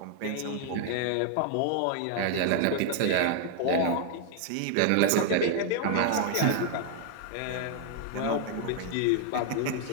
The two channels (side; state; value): both; different; correlation 0.00